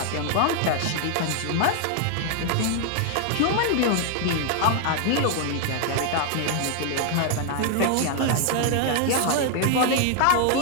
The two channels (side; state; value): both; different; correlation 0.00